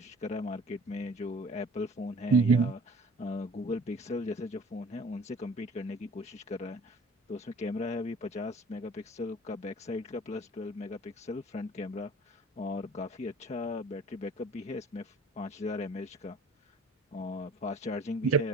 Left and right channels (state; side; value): normal; both; correlation 0.48